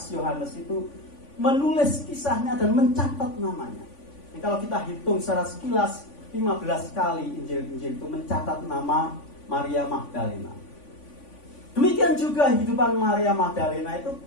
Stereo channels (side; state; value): right; late; 3.5 ms